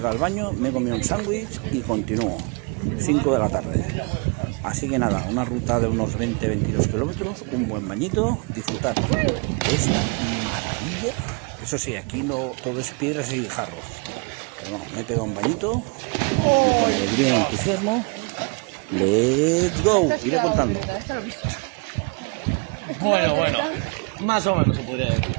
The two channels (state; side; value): quieter; left; 33.9 dB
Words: al baño, me he comido un sándwich y continúo. 5 de la tarde. Así que nada, una ruta de unos 20-22 kilómetros, un buen bañito, disfrutar de esta maravilla. Eso sí, aquí no todo es piedras y jarros. Pero bueno, me he pegado un bañito y con alegría y entusiasmo, let's go, iré contando. Bueno, más o menos se podría decir.